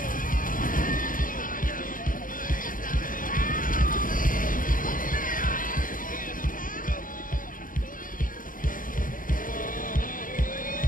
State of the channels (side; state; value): right; late; 0.40 ms